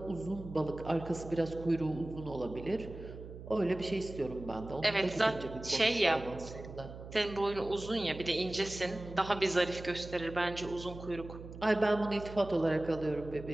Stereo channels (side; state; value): right; noise; hum, 13 dB below the sound